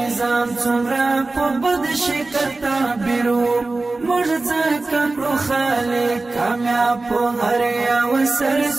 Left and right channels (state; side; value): quieter; left; 3.3 dB